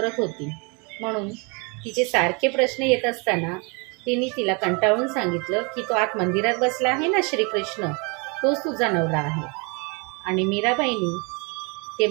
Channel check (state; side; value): quieter; left; 31.6 dB